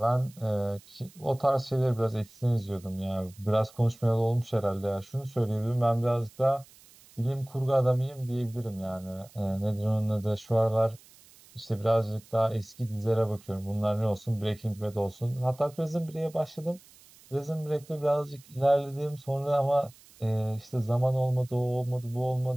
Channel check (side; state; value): right; noise; hiss, 25 dB below the sound